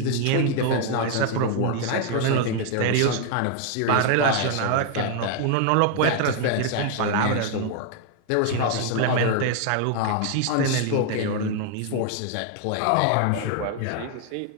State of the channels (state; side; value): different; both; correlation 0.00